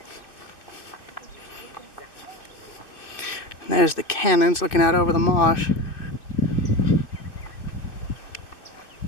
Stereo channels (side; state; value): right; late; 2.6 ms